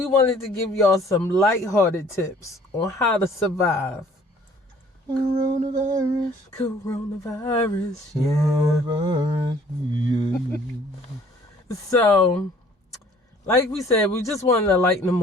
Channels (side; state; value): both; normal; correlation 0.56